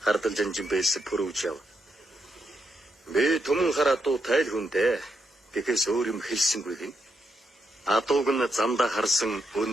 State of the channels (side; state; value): both; normal; correlation 0.81